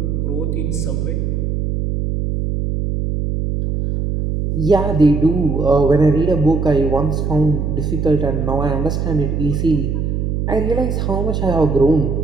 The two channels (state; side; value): noise; right; hum, 1 dB below the sound